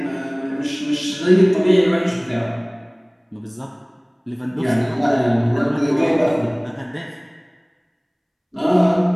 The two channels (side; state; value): both; identical; correlation 1.00